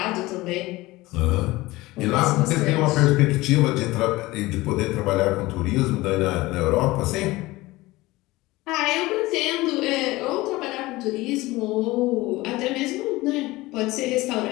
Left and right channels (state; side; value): quieter; right; 19.7 dB